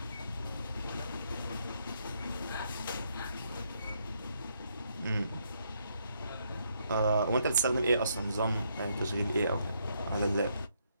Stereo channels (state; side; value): inverted; both; correlation -0.75